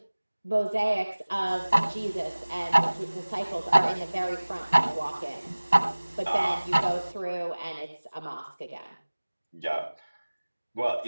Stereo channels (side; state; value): both; inverted; correlation -1.00